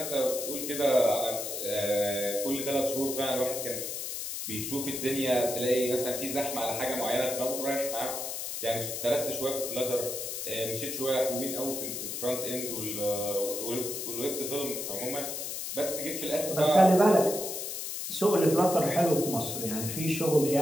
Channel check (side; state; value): left; noise; hiss, 5 dB below the sound